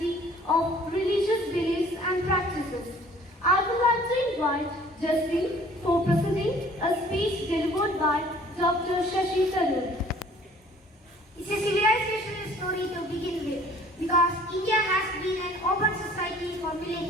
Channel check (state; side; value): normal; both; correlation 0.53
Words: of religious beliefs and practices. I would like to invite Jaspreet for presenting a speech delivered by Dr. Shashi Tharoor. It's a civilization story to begin with, because India has been an open society for